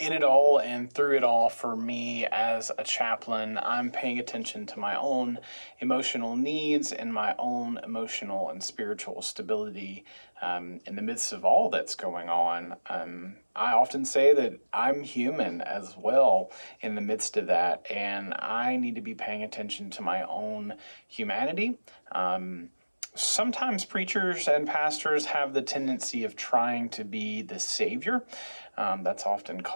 it all and through it all, for me as a chaplain, I'm paying attention to my own emotional needs and my own emotional and spiritual stability in the midst of all that's going on. I often say that I'm human as well in the midst of that, and I need to be paying attention to my own humanity. Sometimes preachers and pastors have the tendency of trying to be the savior. That's often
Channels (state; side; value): inverted; both; correlation -1.00